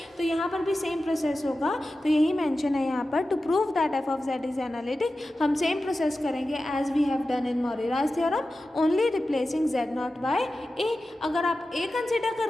तो यहाँ पर भी सेम प्रोसेस होगा. तो यही मेंशन है यहाँ पर, to prove that f of z is analytic हम सेम प्रोसेस करेंगे as we have done in Morera's theorem, only replacing z naught by a. अगर आप a कंसिडर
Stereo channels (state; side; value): normal; both; correlation 0.94